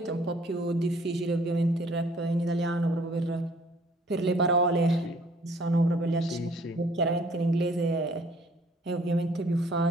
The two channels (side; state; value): both; normal; correlation 0.58